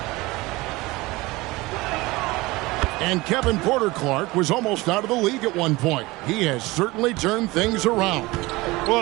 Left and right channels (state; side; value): quieter; left; 21.3 dB